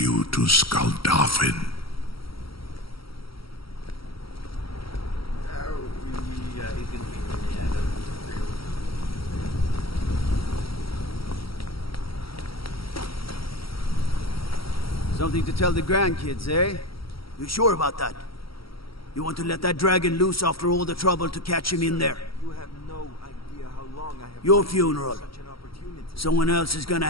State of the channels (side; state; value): right; late; 0.75 ms